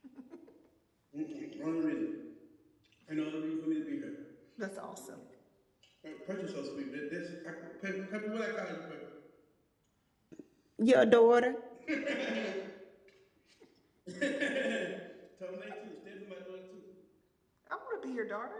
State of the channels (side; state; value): both; identical; correlation 1.00